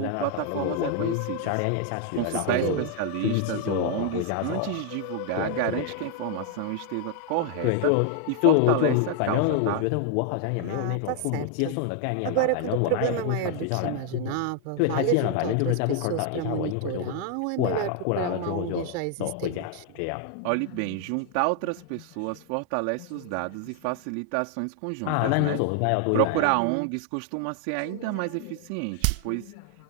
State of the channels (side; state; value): both; different; correlation 0.00